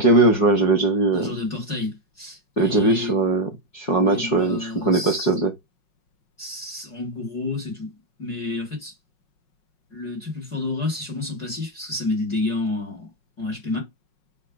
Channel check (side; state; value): right; late; 5.5 ms